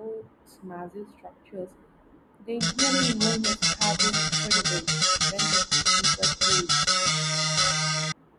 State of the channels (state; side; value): identical; both; correlation 1.00